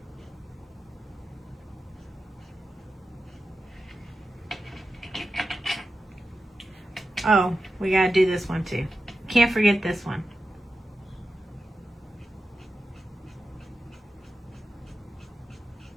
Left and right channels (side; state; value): both; normal; correlation 0.91